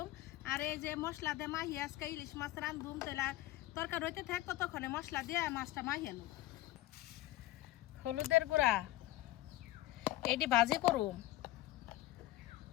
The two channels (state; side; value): quieter; right; 16.3 dB